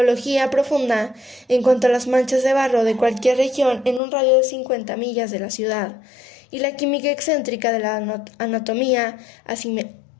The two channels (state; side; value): drops out; right; at 4.0 s